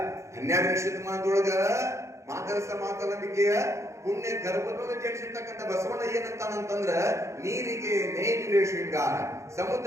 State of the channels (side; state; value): left; late; 0.14 ms